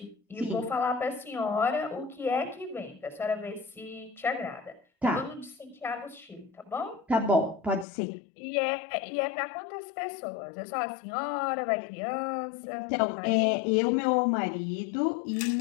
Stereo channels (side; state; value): right; drops out; at 7.9 s